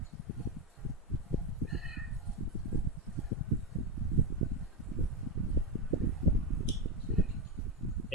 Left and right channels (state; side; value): normal; both; correlation 0.12